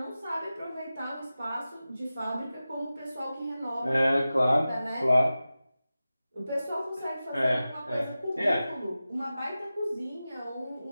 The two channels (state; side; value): inverted; both; correlation -0.94